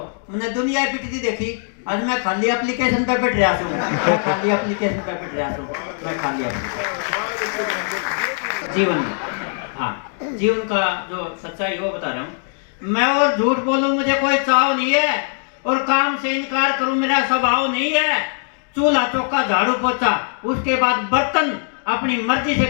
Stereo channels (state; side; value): silent; right; 58 dB below the other